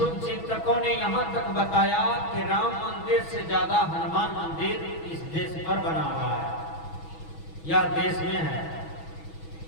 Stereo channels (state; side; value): late; right; 6.2 ms